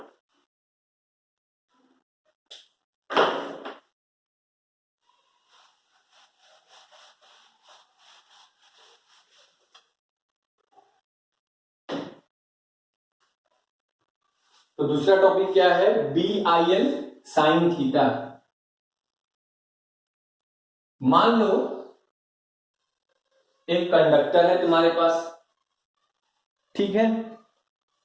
तो दूसरा टॉपिक क्या है, B I L sine theta. मान लो एक कंडक्टर है तुम्हारे पास, ठीक है,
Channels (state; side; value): identical; both; correlation 1.00